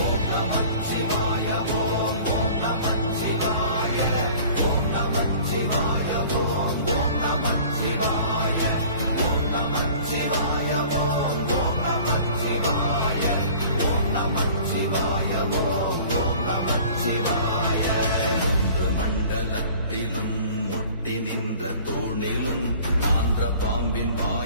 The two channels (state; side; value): inverted; both; correlation -0.47